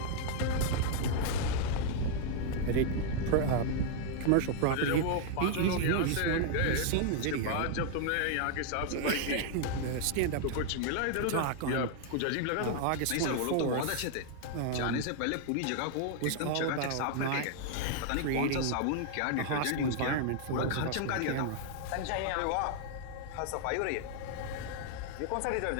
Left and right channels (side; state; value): both; different; correlation 0.00